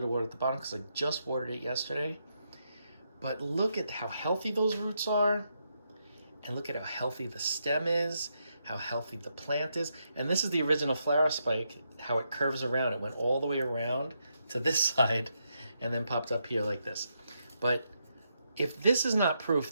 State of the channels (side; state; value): both; inverted; correlation -0.81